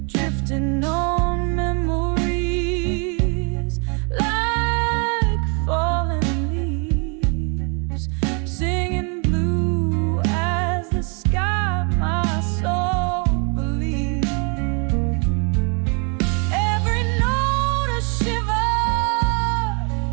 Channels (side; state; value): left; quieter; 35.7 dB